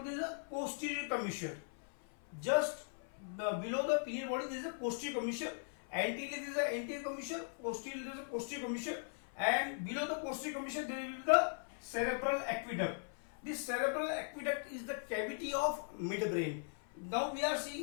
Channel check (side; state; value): right; silent; 52 dB below the other